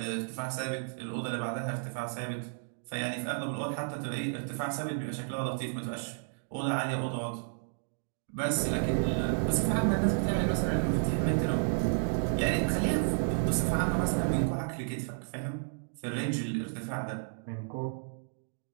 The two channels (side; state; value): left; silent; digital silence